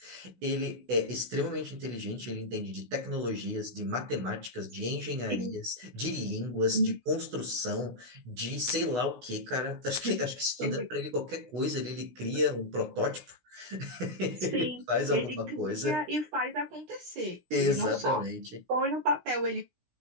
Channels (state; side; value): late; left; 16 ms